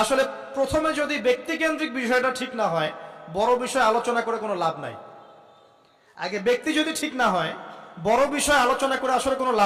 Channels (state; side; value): identical; both; correlation 1.00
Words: আসলে প্রথমে যদি ব্যক্তিকেন্দ্রিক বিষয়টা ঠিক না হয়, বড় বিষয় আলোচনা করে কোনো লাভ নাই। আগে ব্যক্তি যদি ঠিক না হয়, বড় বিষয় আলোচনা করে আসলে কোনো